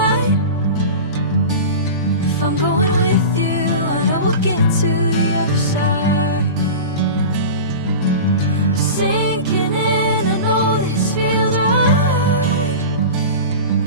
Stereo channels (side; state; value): both; inverted; correlation -0.30